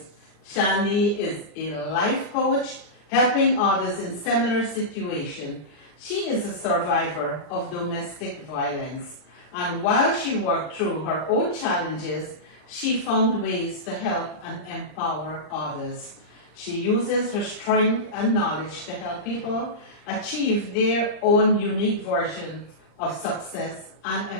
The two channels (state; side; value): late; right; 39 ms